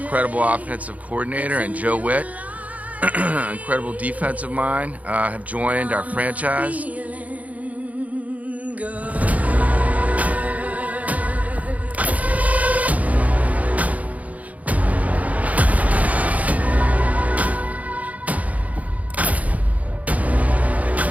offensive coordinator, and Joe Witt, incredible defensive mind, have joined our franchise.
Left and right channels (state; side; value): late; left; 0.071 ms